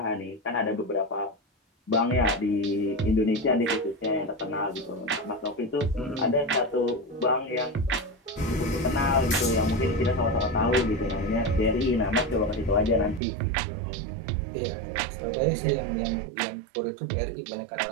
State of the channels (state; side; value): drops out; left; at 13.2 s